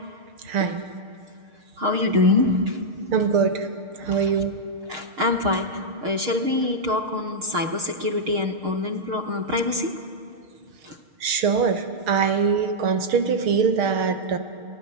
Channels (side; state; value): left; late; 6.5 ms